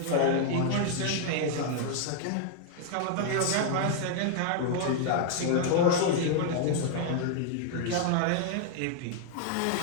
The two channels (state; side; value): different; both; correlation -0.01